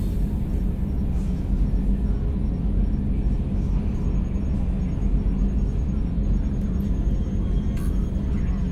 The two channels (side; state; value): both; identical; correlation 1.00